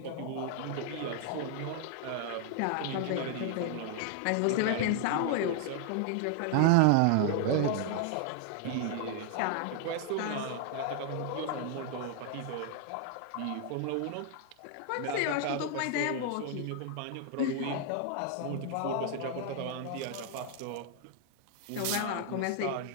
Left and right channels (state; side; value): different; both; correlation 0.00